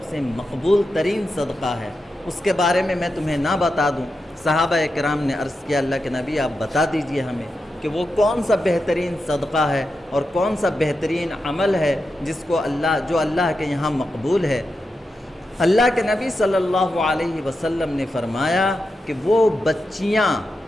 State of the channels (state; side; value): normal; both; correlation 0.88